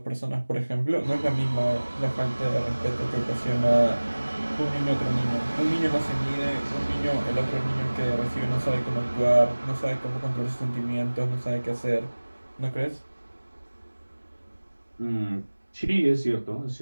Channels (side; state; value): both; inverted; correlation -1.00